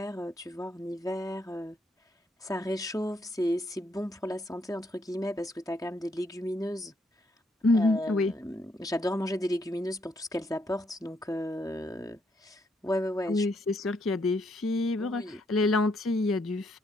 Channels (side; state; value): both; normal; correlation 0.74